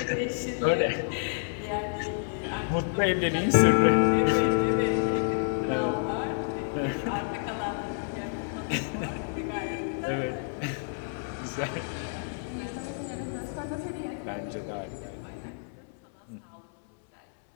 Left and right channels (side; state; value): right; silent; 58 dB below the other